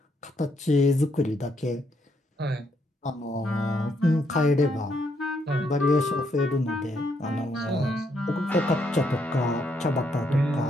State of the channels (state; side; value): normal; both; correlation 0.75